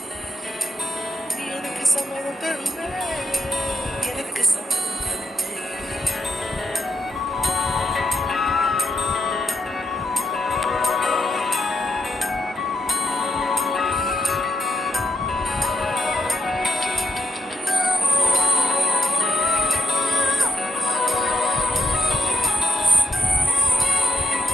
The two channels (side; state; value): both; normal; correlation 0.77